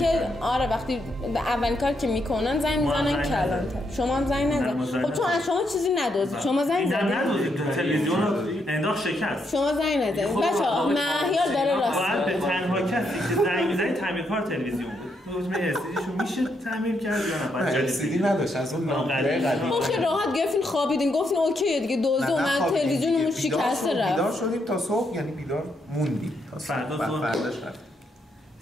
وقتی اولین کار که میکنن زنگ میزنن کلانتر. شما هم زنگ نزدید. خب چون از شما چیزی ندزدید. شما زنگ زدید. نه تلویزیون رو انداخت شکست. شما زنگ نزدید. بچه‌ها مهیار داره راست میگه. به تنها کسی که زنگ میزنه تعمیرکار تلویزیون بود. روزمه استیشو میشه تعمیر کرد یا نه؟ بعد سیدی نداشت از اون نامه قدیم. خب ها گفتین خوابیدین، گفتین اوکی دیگه دزد اومد تلویزیونمون شکسته رفت. بیدار شدیم تا صبح، یعنی بیدار موندیم تا فرداش رفت.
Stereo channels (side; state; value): both; normal; correlation 0.78